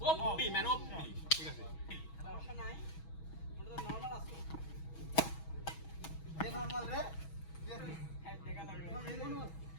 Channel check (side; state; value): right; late; 6.2 ms